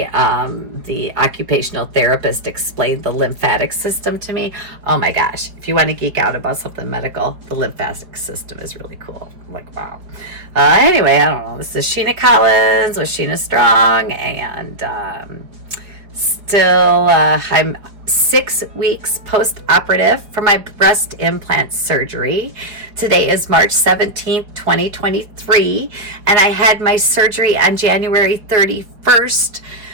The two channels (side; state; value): left; late; 4.9 ms